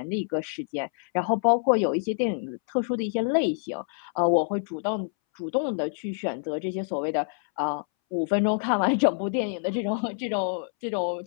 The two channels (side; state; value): right; silent; 60 dB below the other